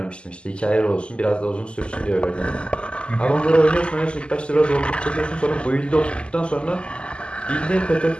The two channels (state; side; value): late; right; 0.052 ms